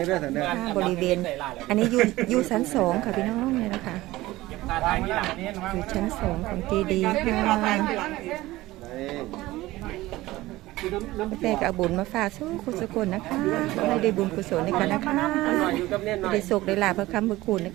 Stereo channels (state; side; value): quieter; left; 17.9 dB